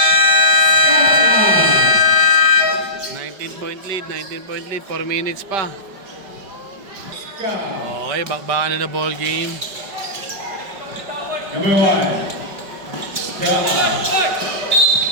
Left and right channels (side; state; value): left; late; 5.2 ms